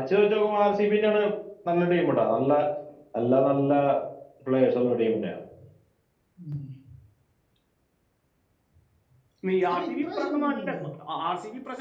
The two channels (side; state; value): both; identical; correlation 1.00